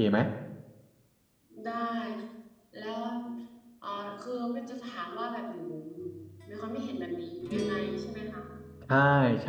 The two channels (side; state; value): both; identical; correlation 1.00